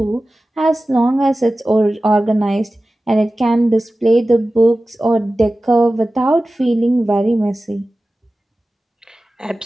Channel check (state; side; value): normal; both; correlation 0.96